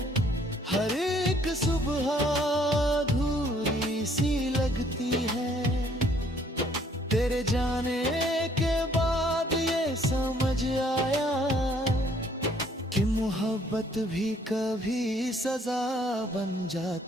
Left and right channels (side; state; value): both; normal; correlation 0.63